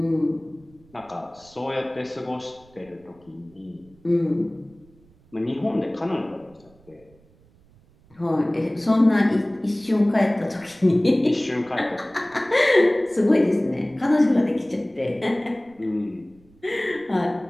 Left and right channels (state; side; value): noise; right; rumble, 29 dB below the sound